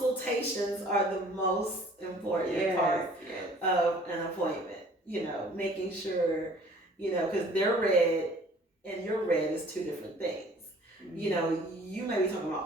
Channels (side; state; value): both; normal; correlation 0.53